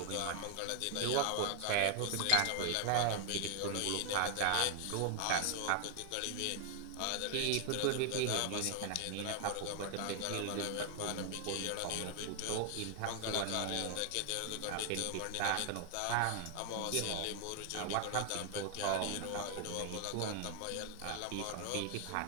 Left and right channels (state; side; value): different; both; correlation 0.00